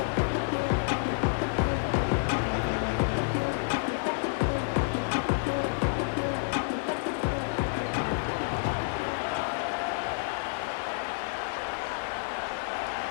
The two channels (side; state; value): right; silent; 56 dB below the other